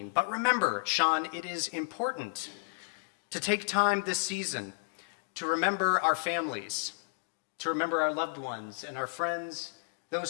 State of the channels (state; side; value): quieter; right; 32.8 dB